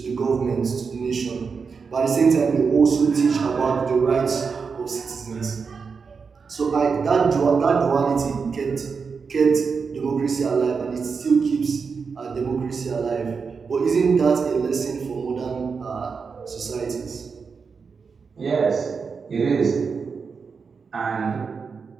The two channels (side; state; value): left; quieter; 5.4 dB